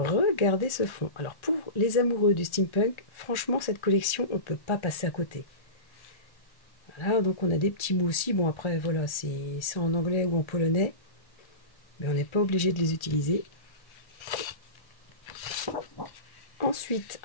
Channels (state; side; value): late; right; 1.3 ms